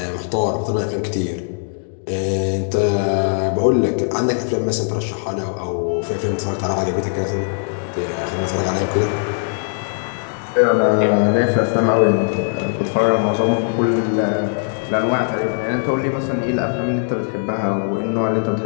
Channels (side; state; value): right; silent; digital silence